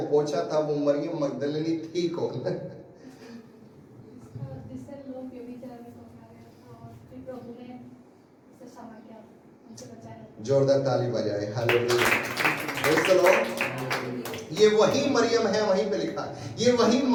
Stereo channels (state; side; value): identical; both; correlation 1.00